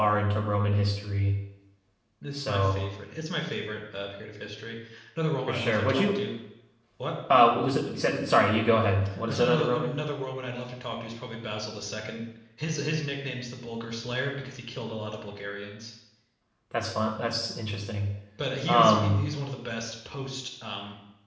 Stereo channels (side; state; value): both; identical; correlation 1.00